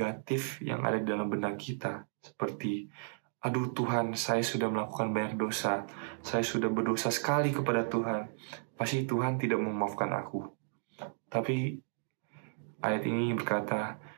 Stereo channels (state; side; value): silent; left; digital silence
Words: yang ada di dalam benak kita, seperti, aduh Tuhan, saya sudah melakukan banyak dosa, saya sudah berdosa sekali kepada Tuhan, pasti Tuhan tidak memaafkan aku. Tapi ayat ini berkata,